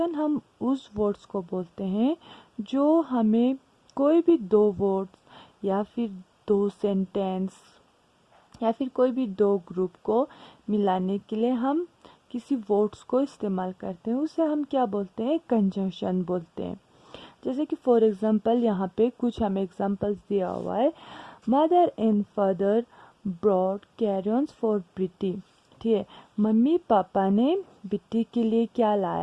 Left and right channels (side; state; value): both; identical; correlation 1.00